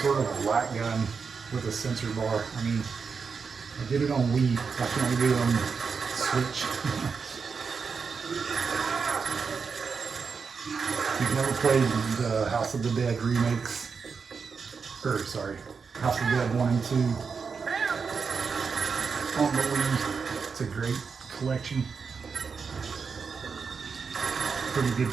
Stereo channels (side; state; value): left; quieter; 5.5 dB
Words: sort of light gun with a sensor bar. I mean, I did it on Wii. I can only do it on Switch. If you've never played the House of the Dead remakes, House of the Dead 1 and 2 on the Wii, it's a great collection. Pretty good